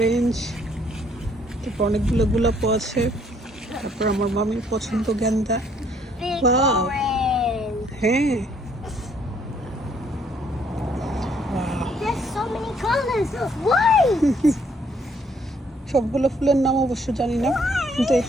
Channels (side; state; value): both; normal; correlation 0.66